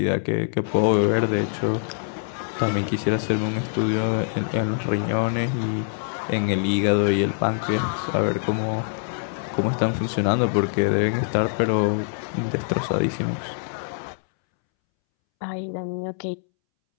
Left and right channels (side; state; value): right; silent; 63 dB below the other